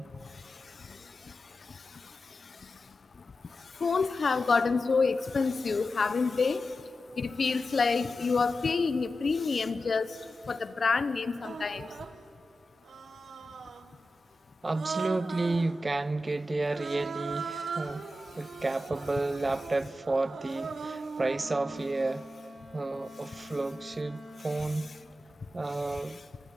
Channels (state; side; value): normal; both; correlation 0.91